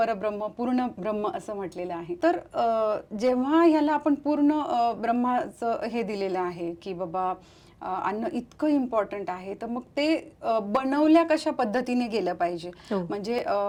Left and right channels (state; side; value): identical; both; correlation 1.00